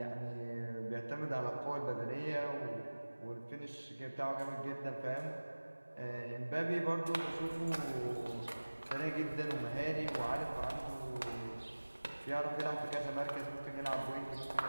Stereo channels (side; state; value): both; inverted; correlation -1.00